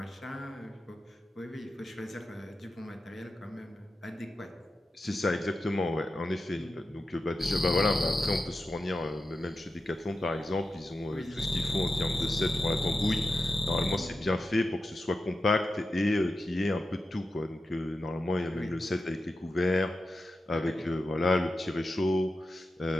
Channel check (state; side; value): normal; both; correlation 0.90